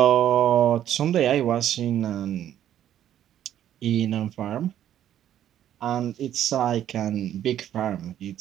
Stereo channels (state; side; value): quieter; left; 11.0 dB